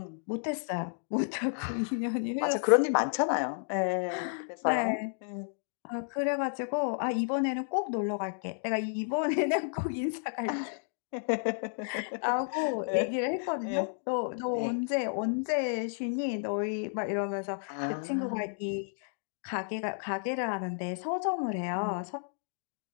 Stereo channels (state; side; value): silent; right; digital silence